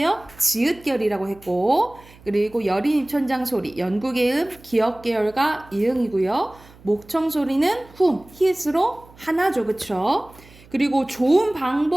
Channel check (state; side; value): noise; right; hum, 24 dB below the sound